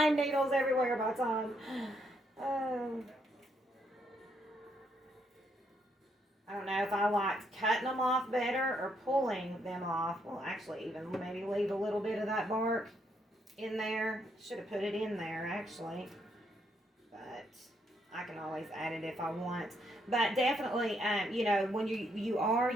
needles everywhere by the time. I don't know if I liked cutting them off better or pulling them off. Well, actually, even maybe leave a little bit of that bark in there. Should have put it in there, actually. But I can always add it if I want. But definitely, you know, when you are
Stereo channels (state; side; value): normal; both; correlation 0.74